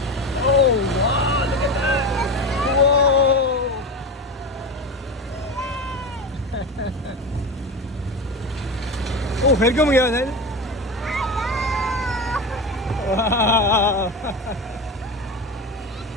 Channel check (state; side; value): normal; both; correlation 0.24